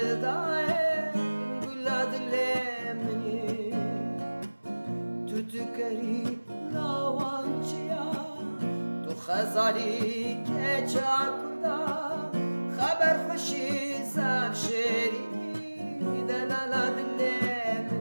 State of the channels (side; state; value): both; inverted; correlation -1.00